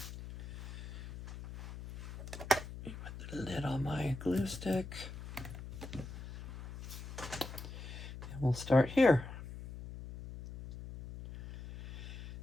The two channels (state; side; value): noise; left; hum, 10 dB below the sound